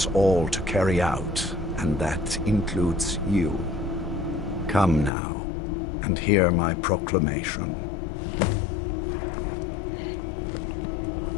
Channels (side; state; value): right; drops out; at 5.1 s